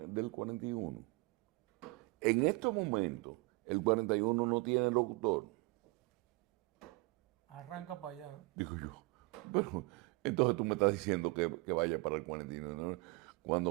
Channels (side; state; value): left; quieter; 25.6 dB